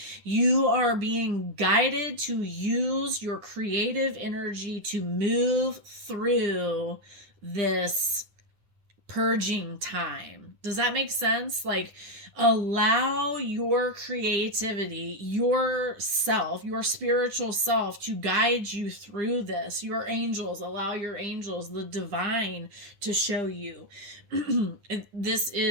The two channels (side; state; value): left; late; 9.9 ms